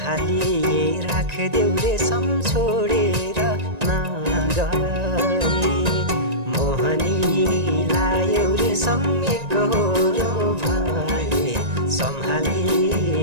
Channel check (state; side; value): late; left; 1.9 ms